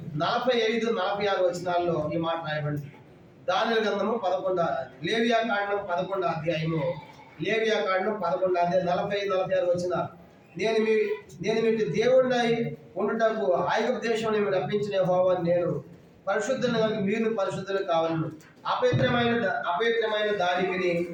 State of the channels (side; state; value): both; identical; correlation 1.00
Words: 45-46 వచనాల్లో ఈ మాట రాయబడింది. దానియేలు గ్రంథము 11 లేవియా కాండం 11వ అధ్యాయము 45-46 వచనాలు. నేను మీకు దేవుడినై ఉండుటకు ఐగుప్తు దేశంలో మీరు రప్పించిన యెహోవాను నేను పరిశుద్ధులను కనుక మీరు పరిశుద్ధులు కావాలను. అపవిత్రమైన దానికిని